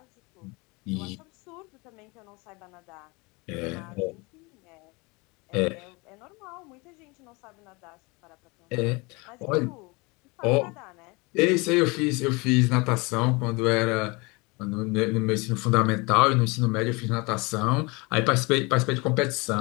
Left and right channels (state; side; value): quieter; right; 26.8 dB